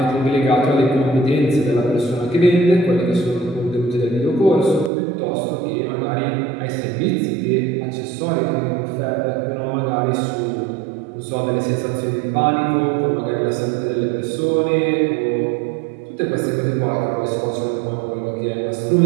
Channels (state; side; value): drops out; left; at 4.9 s